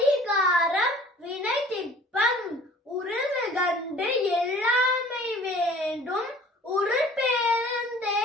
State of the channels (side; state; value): both; normal; correlation 0.50